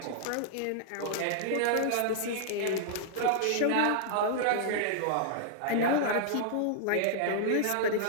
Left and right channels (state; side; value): different; both; correlation -0.01